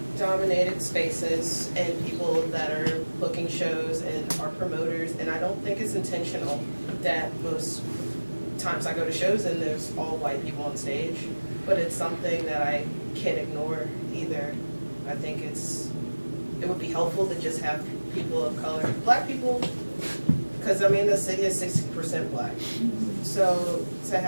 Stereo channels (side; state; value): both; inverted; correlation -1.00